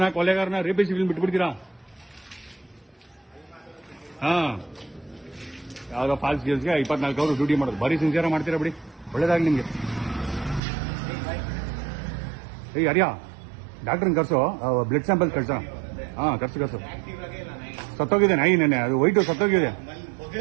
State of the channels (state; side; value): drops out; left; at 10.6 s